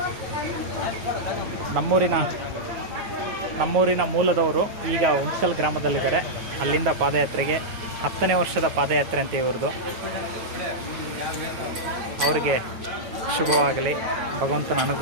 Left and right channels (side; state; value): left; late; 9.0 ms